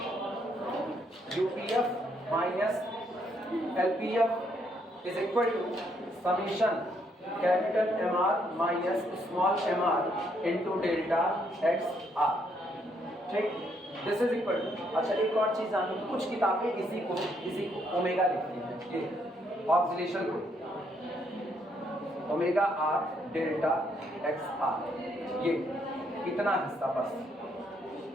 UPF minus LPF is equal to summation capital MR minus small mr into delta XR, ठीक, दिस इज इक्वल टू। अच्छा एक और चीज जानो, कुछ किताबें इसी को ओमेगा लिखती हैं, ये ऑक्सीलेशन को ओमेगा R डेल्टा XR, ये इतना हिस्सा बस,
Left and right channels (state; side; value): normal; both; correlation 0.72